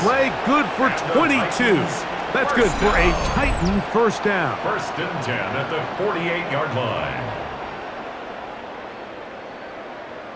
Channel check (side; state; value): both; identical; correlation 1.00